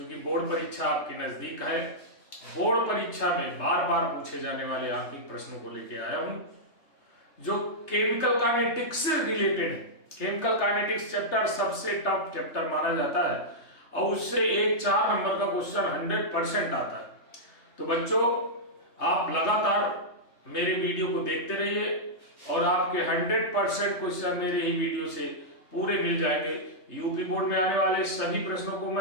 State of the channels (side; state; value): right; late; 3.3 ms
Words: बोर्ड परीक्षा आपके नजदीक है। बोर्ड परीक्षा में बार बार पूछे जाने वाले आंतरिक प्रश्नों को लेके आया हूं, जो केमिकल काइनेटिक्स से रिलेटेड है। केमिकल काइनेटिक्स चैप्टर सबसे टफ चैप्टर माना जाता है और उससे एक 4 नंबर का क्वेश्चन 100% आता है। तो बच्चों, आप लगातार मेरे वीडियो को देखते रहिए और आपके 100% क्वेश्चन मेरे ही वीडियो से पूरे मिल जाएंगे। यूपी बोर्ड में आने वाले सभी प्रश्नों को